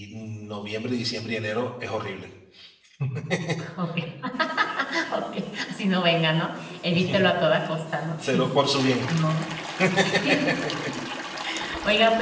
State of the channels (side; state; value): both; identical; correlation 1.00